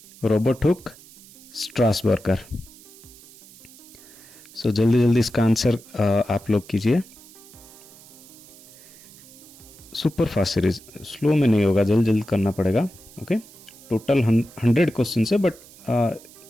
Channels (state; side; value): noise; right; hiss, 21 dB below the sound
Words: Robert Hooke, Strasburger. So जल्दी जल्दी इसका आंसर आप लोग कीजिए। सुपर फास्ट सीरीज, स्लो में नहीं होगा, जल्दी जल्दी करना पड़ेगा। ओके, टोटल 100 क्वेश्चन है, बट